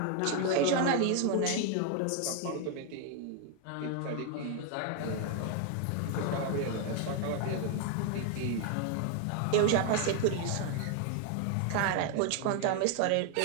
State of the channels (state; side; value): different; both; correlation 0.00